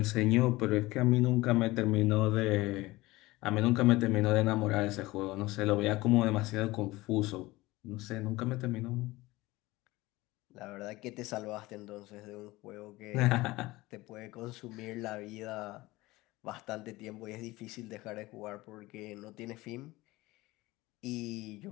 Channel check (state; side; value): quieter; right; 19.9 dB